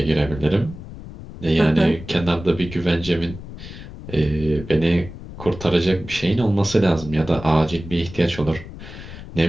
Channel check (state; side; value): noise; left; rumble, 13 dB below the sound